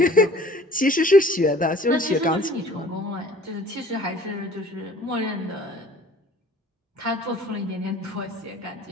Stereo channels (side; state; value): both; normal; correlation 0.50